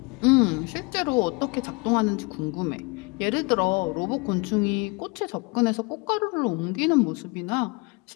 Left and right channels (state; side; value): quieter; right; 27.9 dB